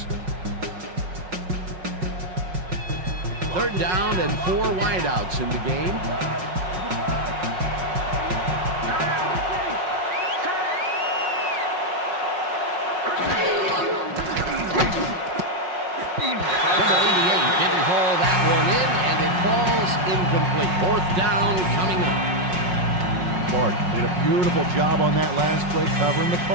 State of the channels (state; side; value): late; left; 5.5 ms